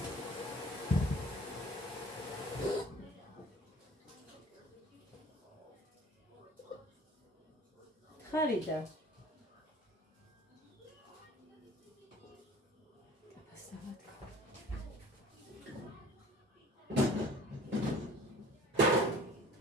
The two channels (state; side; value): normal; both; correlation 0.47